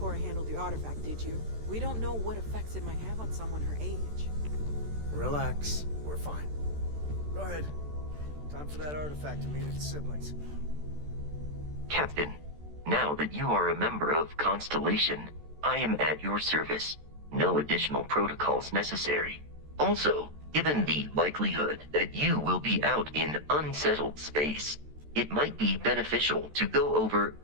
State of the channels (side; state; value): left; late; 14 ms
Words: handle the artifact, did you? We don't know what effects it might have on someone her age. Relax. We're fine. Go ahead. Time for that artifact to meet its siblings. Captain, now that you are a member of Constellation, I am at your service. No additional protocols necessary. Also, given the likelihood that you will be out in unsettled space, it might be beneficial to go over